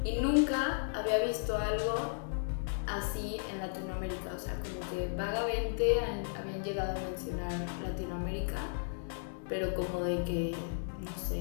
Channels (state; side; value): silent; right; digital silence